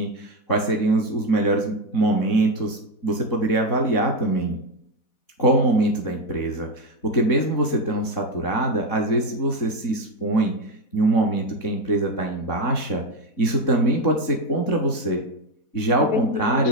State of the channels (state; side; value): late; right; 4.1 ms